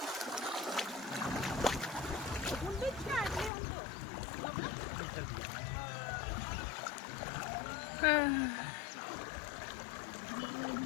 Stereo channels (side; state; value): right; drops out; at 3.5 s